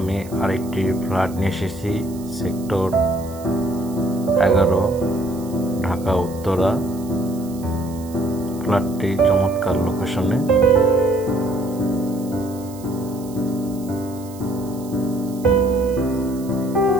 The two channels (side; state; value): right; noise; hiss, 20 dB below the sound